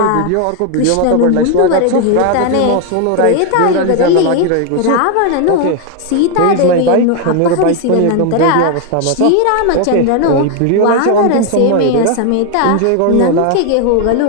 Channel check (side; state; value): both; different; correlation 0.01